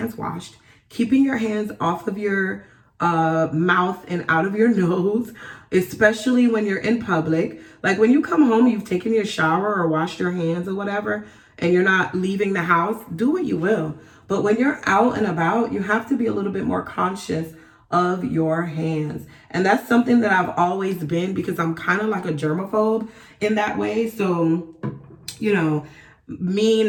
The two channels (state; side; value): identical; both; correlation 1.00